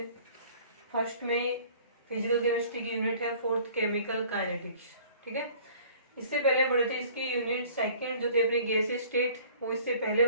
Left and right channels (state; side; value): inverted; both; correlation -0.51